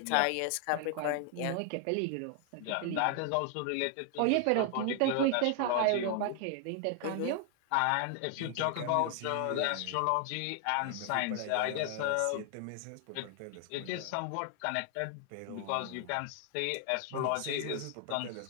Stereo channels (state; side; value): different; both; correlation 0.00